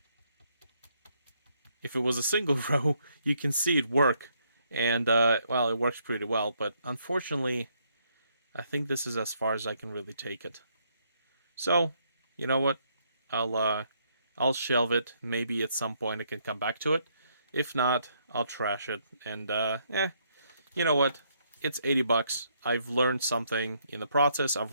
if it was a single row, you can see it work, and well, it works pretty well. But unfortunately, I think this is as far as I can really take it. So, you know what? I'll shelve it. Maybe at some point I can come back to it. If not, I'll trash it. And you know what? It's $80. I've learned something in the process. I've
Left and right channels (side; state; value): both; inverted; correlation -0.72